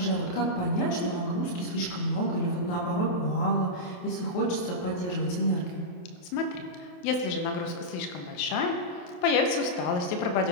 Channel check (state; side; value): late; right; 28 ms